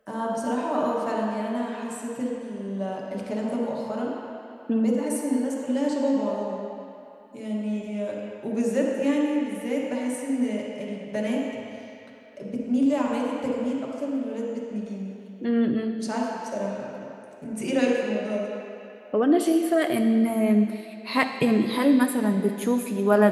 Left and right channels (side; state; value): both; identical; correlation 1.00